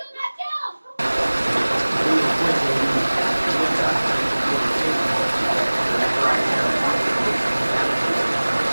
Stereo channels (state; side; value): inverted; both; correlation -1.00